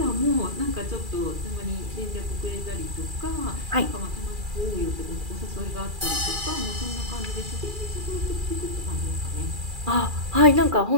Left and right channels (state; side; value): late; left; 2.4 ms